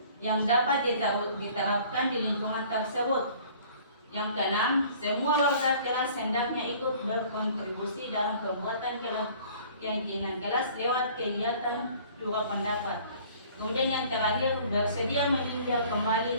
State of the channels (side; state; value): both; inverted; correlation -0.52